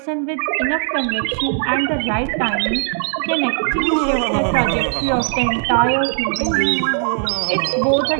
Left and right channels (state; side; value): silent; left; digital silence